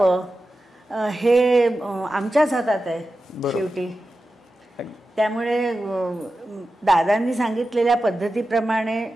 हे आमच्याच हातात आहे शेवटी. त्यामुळे दादांनी सांगितलेल्या पद्धतीप्रमाणे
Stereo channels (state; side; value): normal; both; correlation 0.93